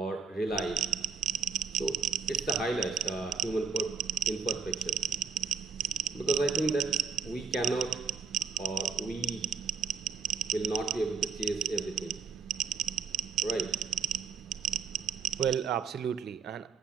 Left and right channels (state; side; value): quieter; left; 6.2 dB